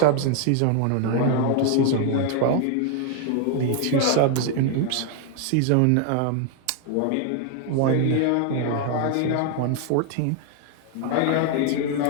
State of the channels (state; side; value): different; both; correlation 0.00